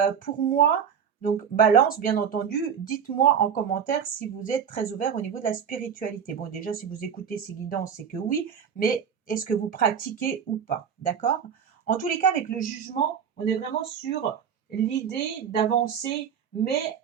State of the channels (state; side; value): quieter; left; 7.7 dB